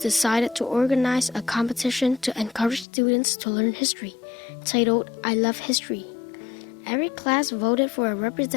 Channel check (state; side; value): drops out; right; at 2.9 s